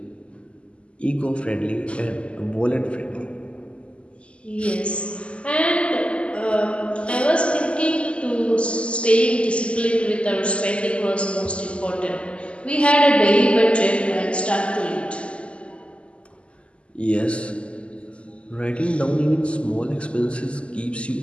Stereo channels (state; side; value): late; right; 0.056 ms